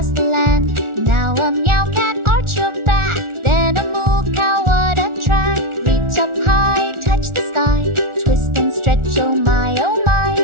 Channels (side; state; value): left; late; 1.4 ms